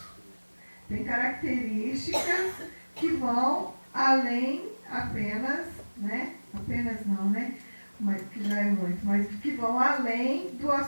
Tem características que vão além apenas, né, apenas não, né, mas que já é muito, mas que vão além do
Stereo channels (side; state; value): both; inverted; correlation -1.00